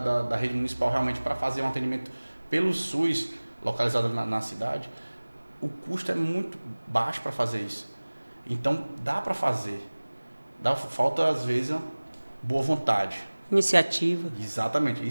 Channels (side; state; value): both; inverted; correlation -1.00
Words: rede municipal realmente para fazer um atendimento pelo SUS, localizado na cidade, o custo é muito baixo para fazer isso. Então dá para fazer. Falta às vezes uma boa vontade. Iniciativa. Exatamente,